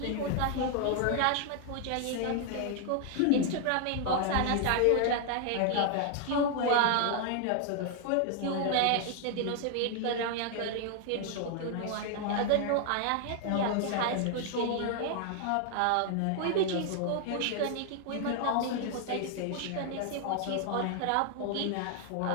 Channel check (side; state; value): both; different; correlation 0.00